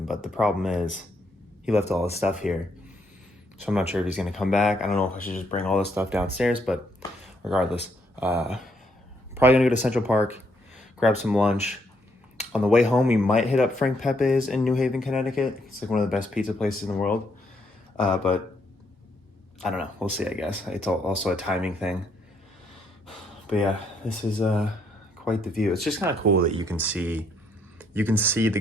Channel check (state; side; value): normal; both; correlation 0.73